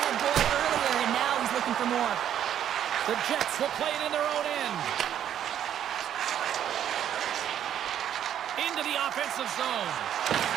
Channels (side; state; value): left; quieter; 10.1 dB